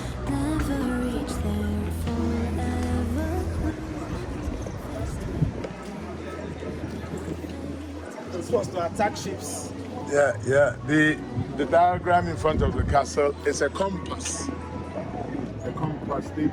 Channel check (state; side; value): identical; both; correlation 1.00